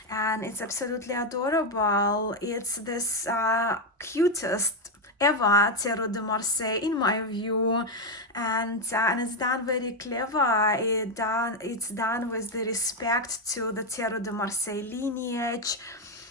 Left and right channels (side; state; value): both; normal; correlation 0.06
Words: and it's absolutely adorable. It's this cutest ever tarot de Marseille in my view, and it's done very clever. It's done with the respect to the tarot de Marseille lineage,